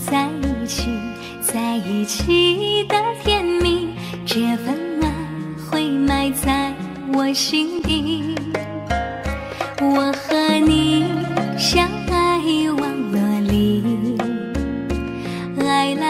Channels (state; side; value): identical; both; correlation 1.00